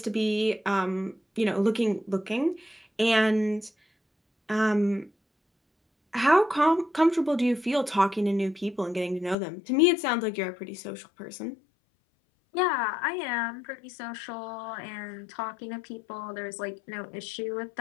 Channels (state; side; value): drops out; right; at 9.3 s